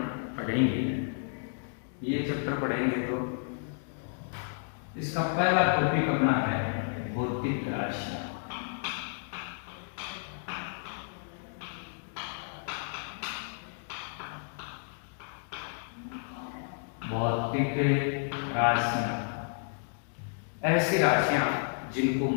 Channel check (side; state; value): right; silent; digital silence